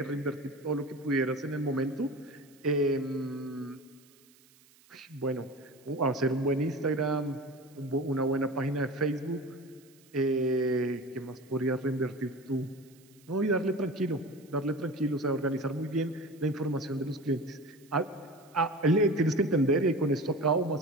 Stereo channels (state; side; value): noise; right; hiss, 28 dB below the sound